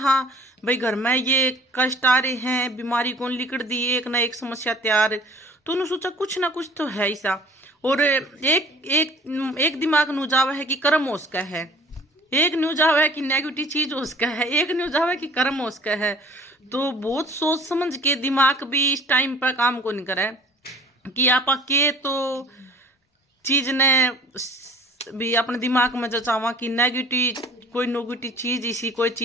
भाई घर में ये कष्ट आ रहे हैं बीमारी कौन लिकड़ दी एक ना एक समस्या तैयार तो उन्होंने सोचा कुछ ना कुछ तो है ऐसा। और एक दिमाग नु जावा है कि कर्म उसका है एक न्यूज आवा है कि नेगेटिव चीज उसका है एक न्यूज आवा है कि कर्म उसका है। तो बहुत सोच समझ के दिमाग भी इस टाइम पर काम को नहीं करे कि आप के तो चीज ने भी अपने दिमाग में जो चावा कि नेगेटिव कोई नेगेटिव चीज इसी कोई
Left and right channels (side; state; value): both; normal; correlation 0.49